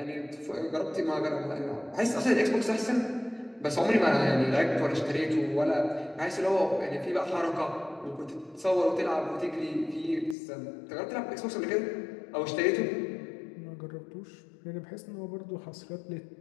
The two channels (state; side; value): drops out; right; at 10.4 s